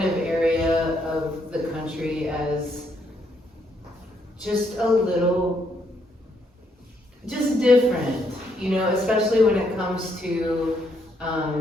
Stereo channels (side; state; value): both; normal; correlation 0.74